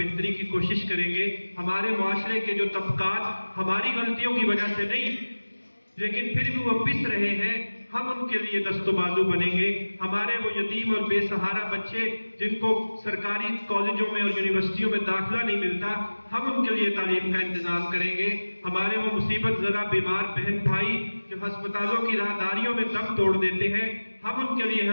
کی کوشش کریں گے۔ ہمارے معاشرے کے جو طبقات ہماری غلطیوں کی وجہ سے نہیں لیکن پھر بھی وہ پس رہے ہیں، ہم ان کے لیے دست و بازو بنیں گے۔ ہمارے وہ یتیم اور بے سہارا بچے جن کو سرکاری کالجوں میں اور یونیورسٹیوں میں داخلہ نہیں ملتا، ہم ان کے لیے تعلیم کا انتظام کریں گے۔ ہمارے وہ مصیبت زدہ بیمار بہن بھائی جو ہسپتالوں کی راہداریوں میں دم توڑ دیتے ہیں، ہم ان کے لیے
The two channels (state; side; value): inverted; both; correlation -1.00